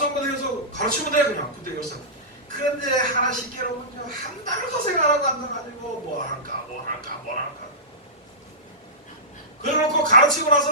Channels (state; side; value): normal; both; correlation -0.17